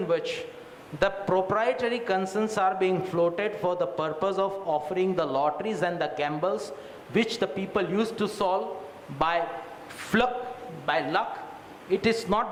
which the proprietary concerns are being floated for the purpose of offering the lotteries and the gambles which the people used to solve by luck. It is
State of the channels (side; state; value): both; identical; correlation 1.00